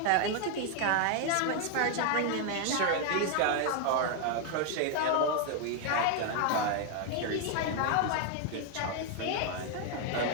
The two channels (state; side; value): different; both; correlation 0.00